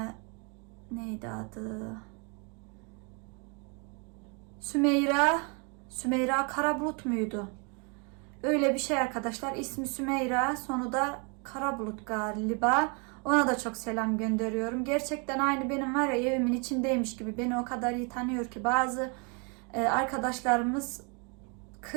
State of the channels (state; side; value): quieter; left; 34.8 dB